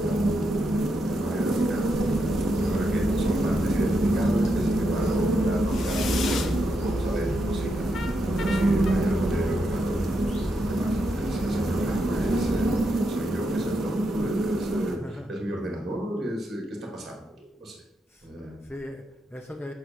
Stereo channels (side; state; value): both; normal; correlation 0.82